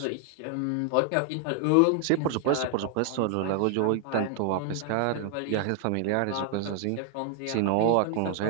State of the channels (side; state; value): both; different; correlation 0.00